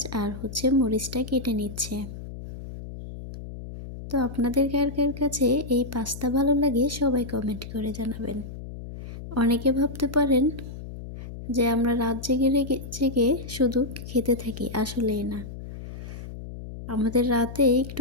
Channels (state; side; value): noise; left; hum, 11 dB below the sound